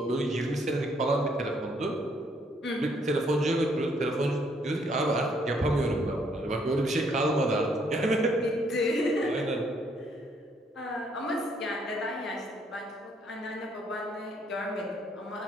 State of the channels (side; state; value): both; normal; correlation 0.69